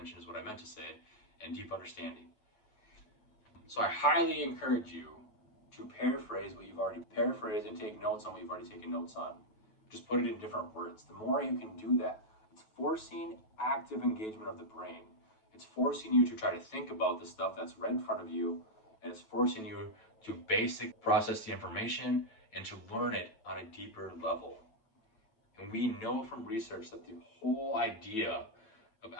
is what I meant to say, and deep understanding. So I highly encourage you to paraphrase what you've already paraphrased and take notes on what you've already taken notes on. Just put it in different words. The more you can do that, it's forcing active engagement of the brain. It's forcing you to try to think about the stuff that's right in front of you, and it's forcing you to basic process the information and to learn it on a deeper level. And we know from research that the whole idea of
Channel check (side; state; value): right; late; 9.2 ms